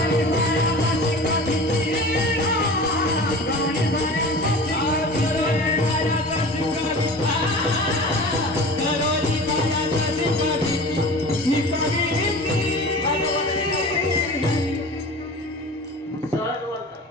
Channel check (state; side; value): normal; both; correlation 0.37